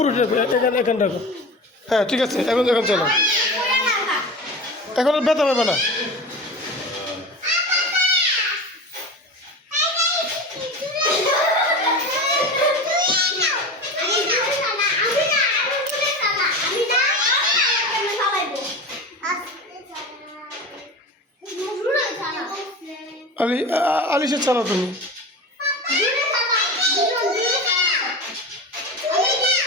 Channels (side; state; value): both; normal; correlation 0.29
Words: উঠে রাখো, এখানে রাখো। হ্যাঁ ঠিক আছে, এখন চলো, এখন আর ব্যথা পাবে না। আলিশা চালাও তুমি।